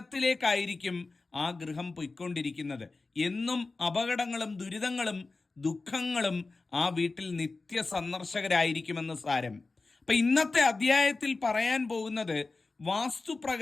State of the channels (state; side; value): quieter; right; 3.7 dB